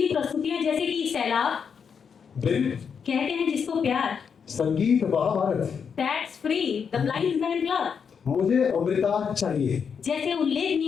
प्रस्तुतियां जैसे कि सैलाब, बिल, कहते हैं जिसको प्यार, संगीत Mahabharata, that's free, the blind man club मुझे अमृता चाहिए, जैसे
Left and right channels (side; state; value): right; quieter; 6.6 dB